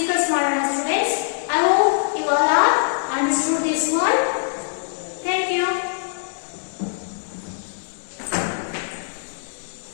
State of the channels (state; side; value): silent; right; digital silence